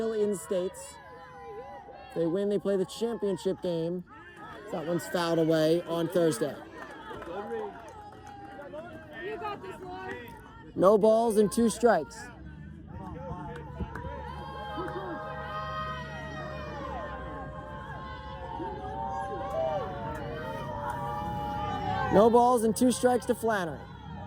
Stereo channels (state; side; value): identical; both; correlation 1.00